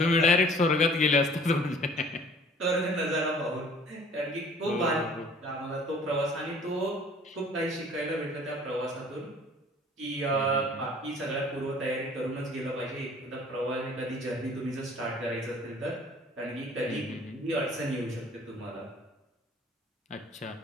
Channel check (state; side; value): normal; both; correlation 0.52